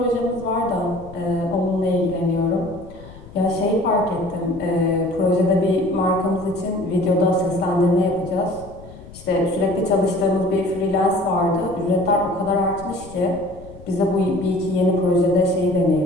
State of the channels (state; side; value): noise; left; rumble, 18 dB below the sound